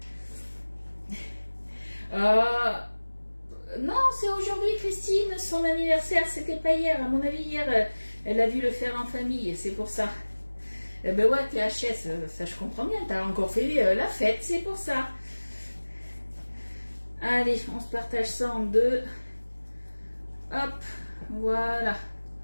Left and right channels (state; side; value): inverted; both; correlation -1.00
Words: Non, c'est aujourd'hui Christine, son anniversaire, c'était pas hier. À mon avis, hier, elle a dû le faire en famille, c'est pour ça. Eh ben ouais, t'es HS, ça je comprends bien, t'as encore fait la fête, c'est pour ça. Allez, on se partage ça en deux. Hop, voilà.